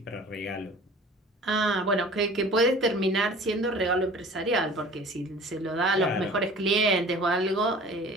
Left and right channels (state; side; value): normal; both; correlation 0.45